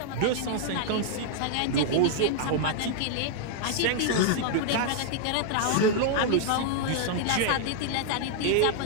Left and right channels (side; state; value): both; different; correlation 0.00